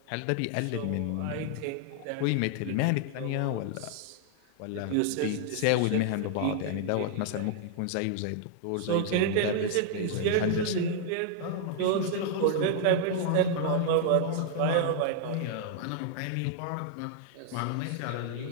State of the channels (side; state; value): both; different; correlation 0.00